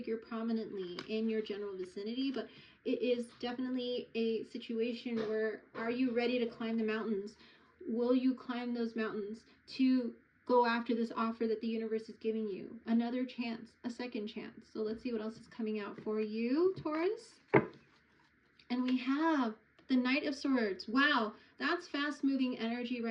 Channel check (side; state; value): both; identical; correlation 1.00